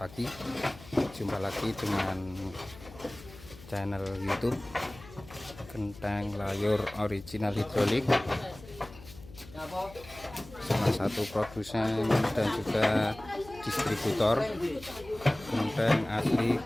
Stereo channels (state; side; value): noise; left; hum, 18 dB below the sound